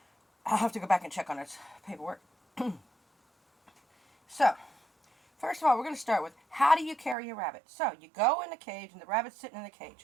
I'll have to go back and check on its paperwork. So, first of all, we're going to start with how do you carry a rabbit? So, you go in the cage and the rabbit's sitting in the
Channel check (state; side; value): drops out; left; at 7.2 s